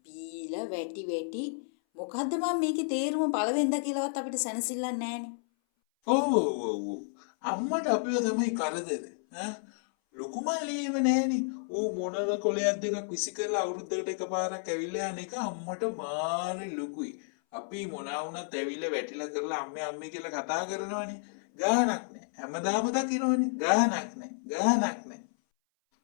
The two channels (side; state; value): right; silent; 57 dB below the other